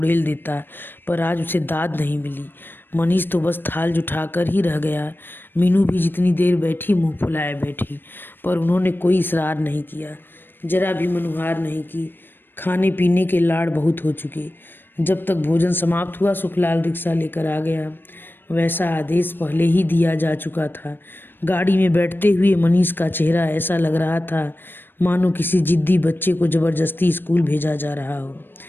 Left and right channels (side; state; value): right; late; 0.096 ms